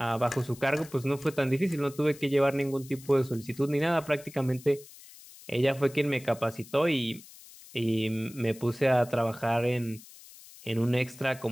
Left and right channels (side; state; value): left; noise; hiss, 20 dB below the sound